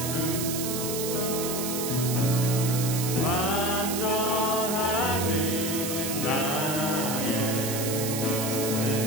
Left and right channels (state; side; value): noise; right; hiss, 4 dB below the sound